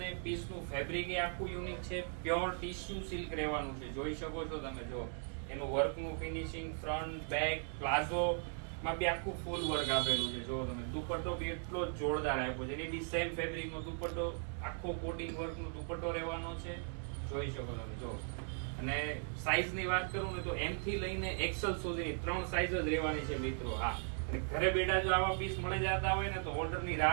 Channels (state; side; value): silent; left; 52 dB below the other